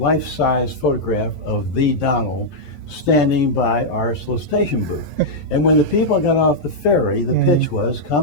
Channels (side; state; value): right; late; 11 ms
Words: photograph of the Donald standing by our solicitation booth. And when the people got off the ferry, the pitch was,